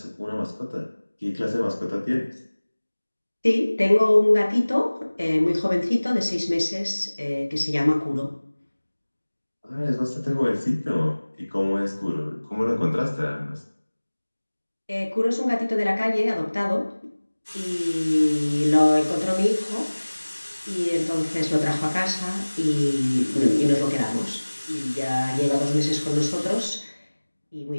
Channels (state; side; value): inverted; both; correlation -1.00